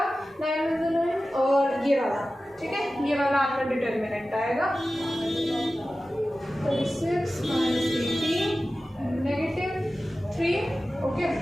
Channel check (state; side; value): normal; both; correlation 0.95